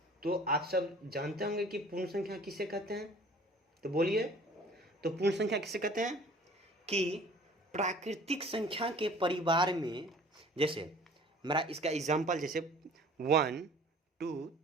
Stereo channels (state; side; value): normal; both; correlation 0.48